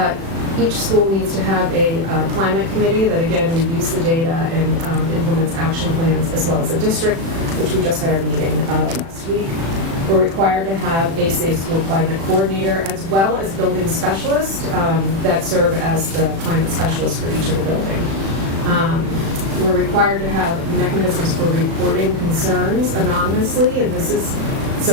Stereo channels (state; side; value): late; left; 36 ms